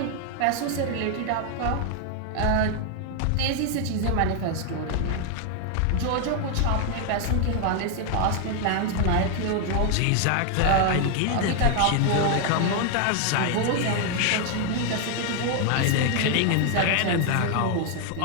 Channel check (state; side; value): different; both; correlation 0.00